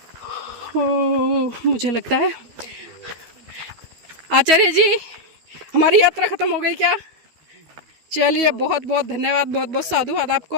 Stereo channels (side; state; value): left; late; 13 ms